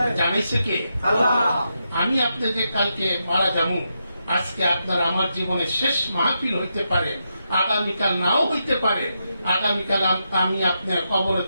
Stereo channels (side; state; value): both; inverted; correlation -0.84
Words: জানিছে কে? আমি আপনাদের কালকে মারা যাবো, আজকে আপনার আমার জীবনের শেষ মাহফিল হইতে পারে, আগামীকাল নাও হইতে পারে, আগামীকাল আমি আপনার কবরে